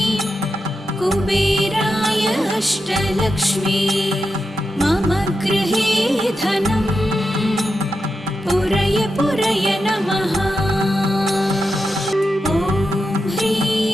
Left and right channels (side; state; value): both; normal; correlation 0.88